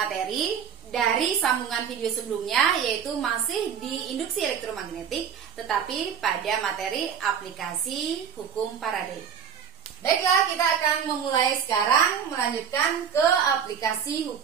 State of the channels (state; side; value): quieter; left; 7.7 dB